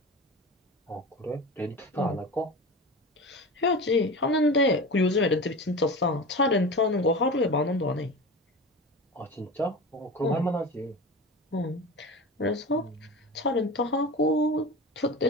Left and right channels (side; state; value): both; normal; correlation 0.30